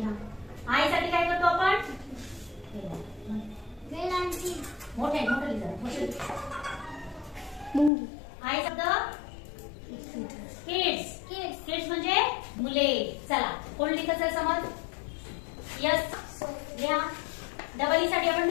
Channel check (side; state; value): right; drops out; at 7.9 s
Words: आय साठी काय करतो आपण? मोठे आय शब्द किड्स। किड्स म्हणजे मुले। चला कोण लिहितं समज? यस लिहा। डबल ई साठी आपण